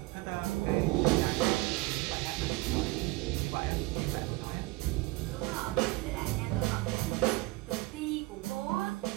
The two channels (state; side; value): quieter; left; 21.5 dB